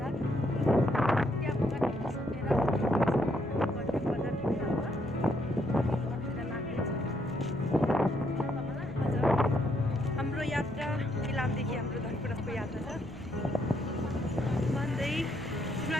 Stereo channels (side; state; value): both; normal; correlation 0.74